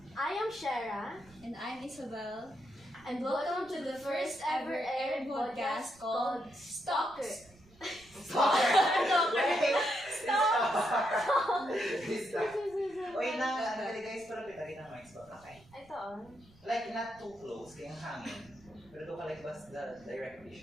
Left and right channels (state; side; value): noise; right; rumble, 26 dB below the sound